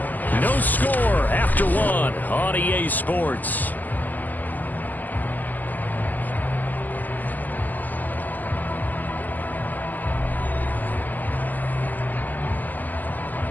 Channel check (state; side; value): late; right; 0.084 ms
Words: No score after 1 on EA Sports.